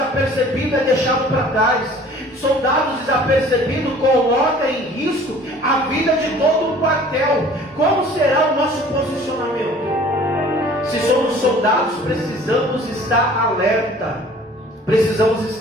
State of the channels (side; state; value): both; normal; correlation 0.50